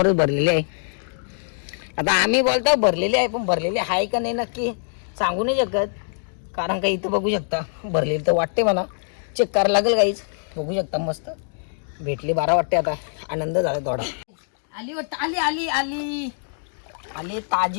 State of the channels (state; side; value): silent; right; digital silence